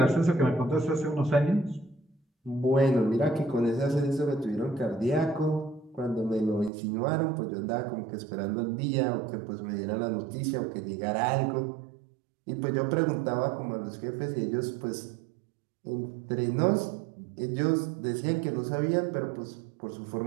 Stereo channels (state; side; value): drops out; left; at 6.7 s